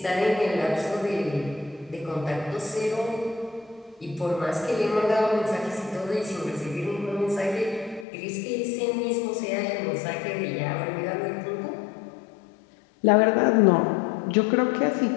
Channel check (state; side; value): drops out; right; at 8.1 s